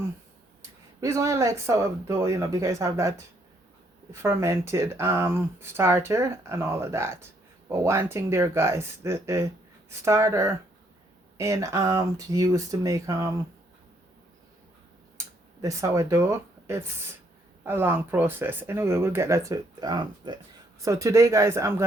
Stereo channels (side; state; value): both; normal; correlation 0.70